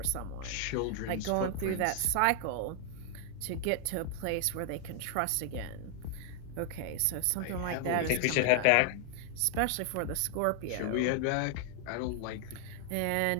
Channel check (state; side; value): different; both; correlation 0.00